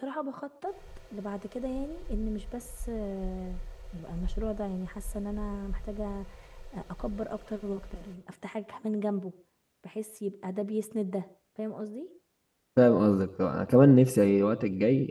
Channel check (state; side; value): identical; both; correlation 1.00